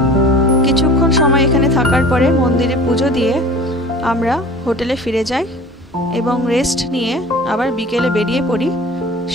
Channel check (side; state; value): both; normal; correlation 0.42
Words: কিছুক্ষণ সময় এখানে থাকার পরে মন্দিরে পুজো দিয়ে আমরা হোটেলে ফিরে যাই এবং রেস্ট নিয়ে আবার বিকেলে বেরিয়ে পড়ি